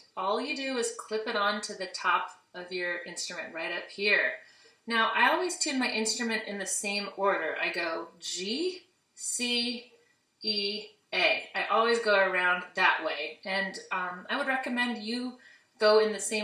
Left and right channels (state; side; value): identical; both; correlation 1.00